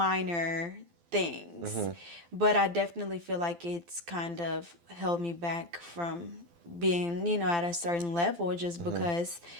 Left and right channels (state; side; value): late; left; 12 ms